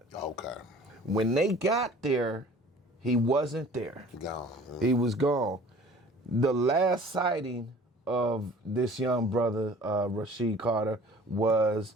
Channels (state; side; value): normal; both; correlation 0.48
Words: Okay. When they got there, he wasn't there. Gone. He was gone. The last sighting of this young brother, Rasheem Carter,